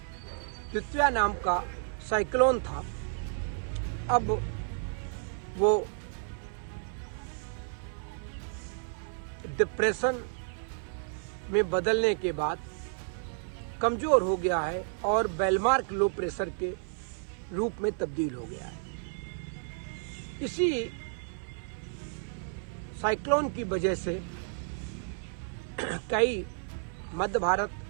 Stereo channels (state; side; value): silent; left; 55 dB below the other